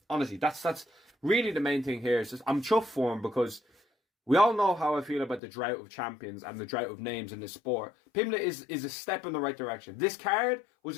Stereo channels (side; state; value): right; drops out; at 5.4 s